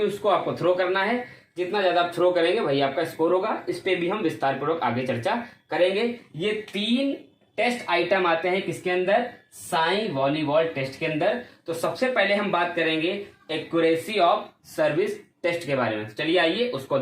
उसको आपको थ्रो करना है। जितना ज्यादा आप थ्रो करेंगे वही आपका स्कोर होगा। इस पे भी हम विस्तार पूर्वक आगे चर्चा करेंगे। ये 3 टेस्ट आइटम आते हैं किसके अंदर? साई वॉलीबॉल टेस्ट के अंदर। तो सबसे पहले हम बात करेंगे एक्यूरेसी ऑफ सर्विस टेस्ट के बारे में। चलिए आइए उसको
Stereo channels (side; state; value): both; identical; correlation 1.00